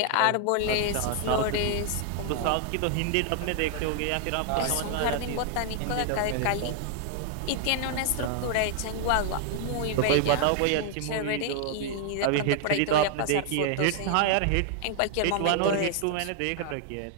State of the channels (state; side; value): different; both; correlation 0.00